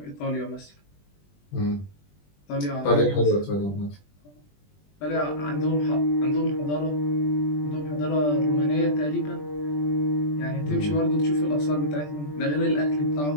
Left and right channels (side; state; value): right; late; 20 ms